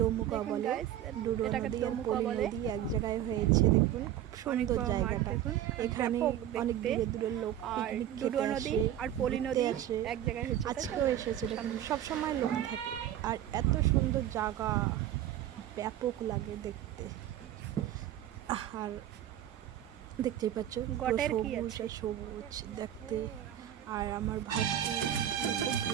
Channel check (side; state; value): left; quieter; 11.5 dB